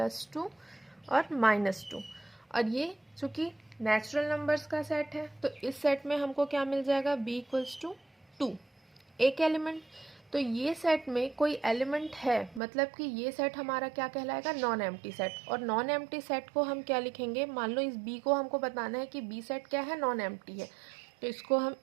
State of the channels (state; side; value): drops out; left; at 12.6 s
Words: और -2। और ये चूंकि नेचुरल नंबर्स का सेट है, तो इस सेट में हमको क्या मिल जाएगा? b इक्वल्स टू 2, एक एलिमेंट। तो ये सेट में कोई एलिमेंट है, मतलब कि ये सेट हमारा क्या कहलाएगा? Non empty set. और नॉन एम्प्टी सेट को हम क्या लिखेंगे? मान लो इस b को हमको बताना है कि b सेट क्या है? नॉन एम्प्टी है। तो इसको हम